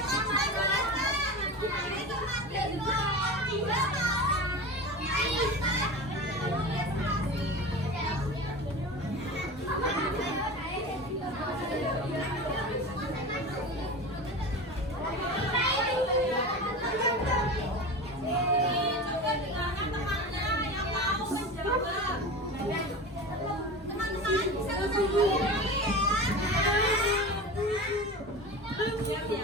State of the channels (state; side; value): normal; both; correlation 0.30